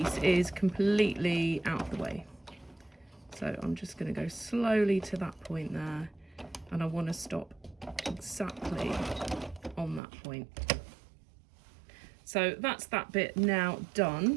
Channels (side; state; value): left; drops out; at 10.0 s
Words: is completely out of the way. So I'm just going to go slowly to that point there, and I want to stop exactly on that point. So that's that bit now